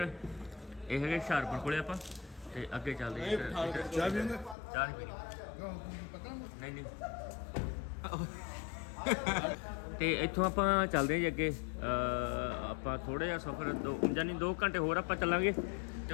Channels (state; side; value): drops out; right; at 4.5 s